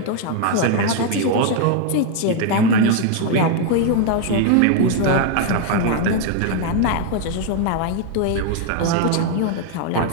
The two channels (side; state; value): both; different; correlation 0.00